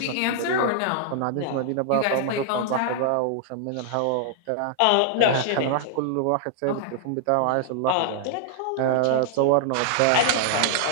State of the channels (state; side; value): different; both; correlation -0.01